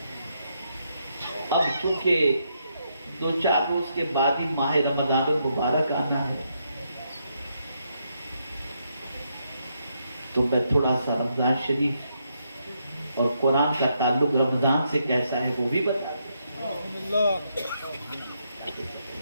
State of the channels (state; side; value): inverted; both; correlation -0.78